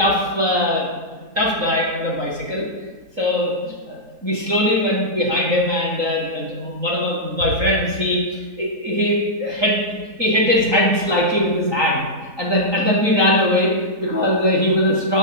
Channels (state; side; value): late; left; 3.9 ms